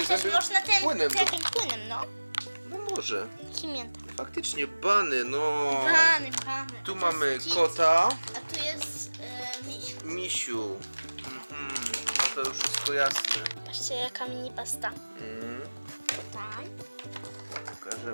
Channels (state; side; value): inverted; both; correlation -1.00